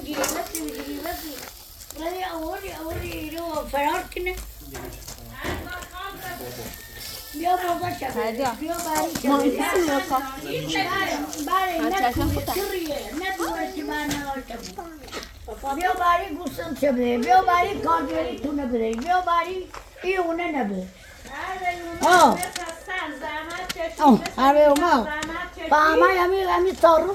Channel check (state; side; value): identical; both; correlation 1.00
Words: بسی ولی اولی ایرو فرار کنه بیا بابا شد بیا باری شد باری نکویه ندوه که من نواشتم بیا باری گوستم چه بده بیا باری کاردوری تو نبده بیا باری ایونه نبده آره اوما فهمه همی